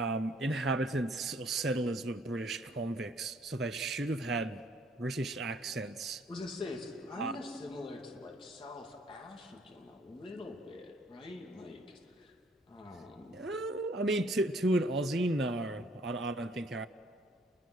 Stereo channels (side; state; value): both; normal; correlation 0.62